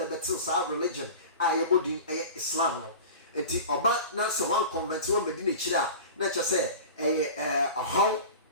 bɛte saa religion a yɛbɔ din ɛyɛ Islam no nti ɔba na sɛ wan convert wɔn bɛdi n'akyiri a na kyerɛ sɛ ɛyɛ ɔhaw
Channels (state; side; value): inverted; both; correlation -0.34